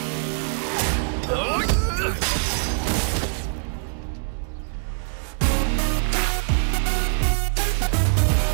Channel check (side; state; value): left; silent; 63 dB below the other